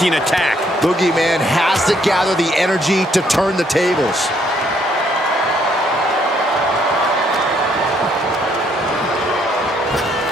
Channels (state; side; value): normal; both; correlation 0.69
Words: attack. Boogeyman has to gather the energy to turn the tables.